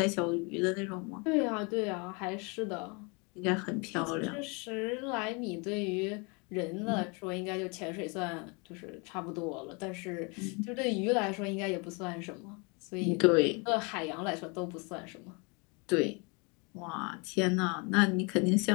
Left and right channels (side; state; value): right; quieter; 31.4 dB